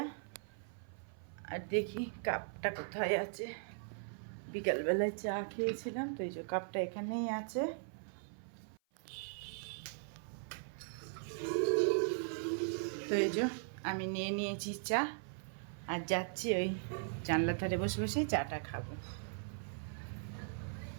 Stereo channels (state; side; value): silent; left; 52 dB below the other